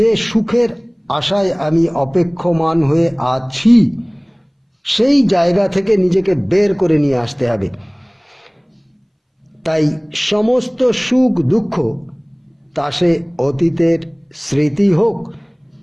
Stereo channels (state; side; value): identical; both; correlation 1.00